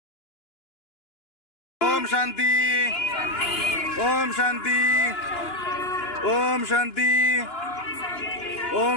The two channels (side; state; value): right; late; 2.9 ms